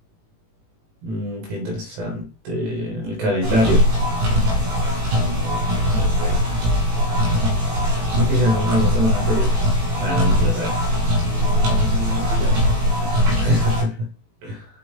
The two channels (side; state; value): left; late; 18 ms